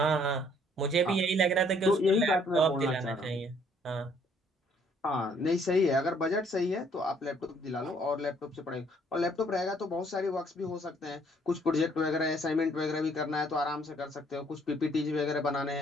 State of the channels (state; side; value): normal; both; correlation 0.63